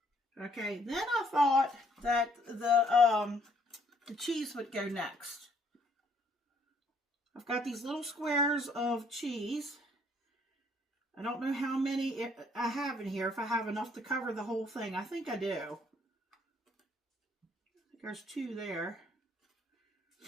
Okay, then I thought that the cheese would go next. I've got these little squares of cheese. I don't know how many I have in here, if I have enough to cover the whole thing. I think I do. I think there's 2 there.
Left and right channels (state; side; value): normal; both; correlation 0.65